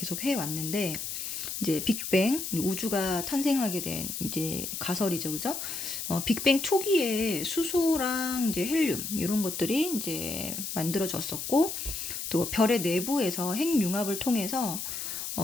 해왔는데, 이제 빅뱅, 우주가 탄생하게 된 이제 가설이죠, 그죠? 빅뱅 초기에 수소랑 이제 헬륨, 이런 것들이 이제 만들어졌었고, 또 별의 내부에서 핵융합을 통해서,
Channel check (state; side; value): noise; left; hiss, 5 dB below the sound